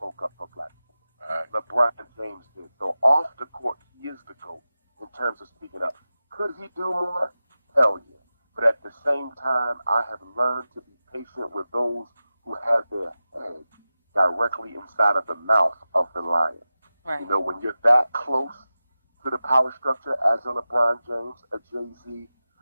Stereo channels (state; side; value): inverted; both; correlation -0.94